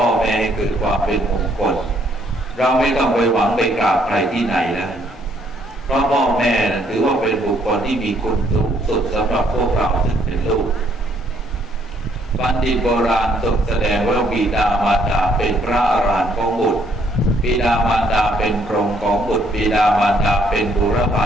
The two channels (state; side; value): normal; both; correlation 0.67